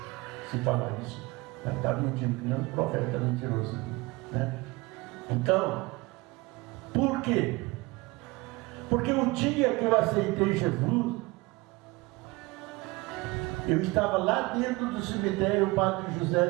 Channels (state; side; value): quieter; left; 23.0 dB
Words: Se falar isso, está mentindo, que não é um profeta mentiroso, né? Então, por quê? Porque o dia que eu aceitei Jesus, eu estava lá dentro do cemitério Padre José